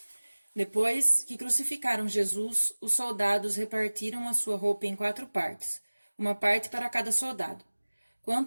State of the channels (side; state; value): both; inverted; correlation -1.00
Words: Depois que crucificaram Jesus, os soldados repartiram a sua roupa em 4 partes, uma parte para cada soldado.